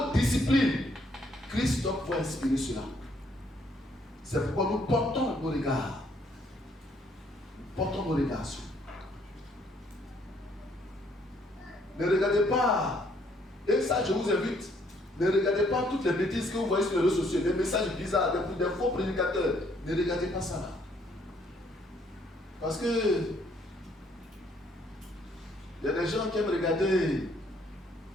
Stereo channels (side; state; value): both; normal; correlation 0.67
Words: Christ doit pouvoir inspirer cela. C'est pourquoi nous portons nos regards. Nous portons nos regards sur. Ne regardez pas, et ça je vous invite, ne regardez pas toutes les bêtises que vous voyez sur les réseaux sociaux, des messages bizarres, des faux prédicateurs. Ne regardez pas ça là. Parce que il y a des gens qui aiment regarder